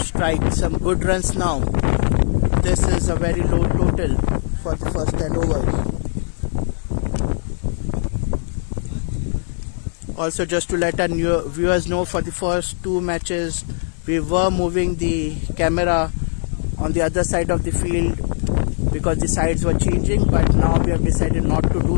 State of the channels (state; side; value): silent; right; digital silence